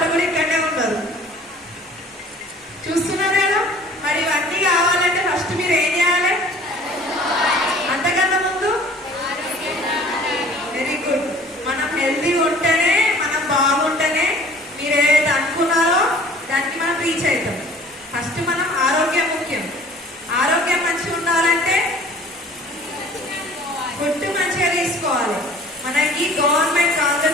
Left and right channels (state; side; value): normal; both; correlation 0.49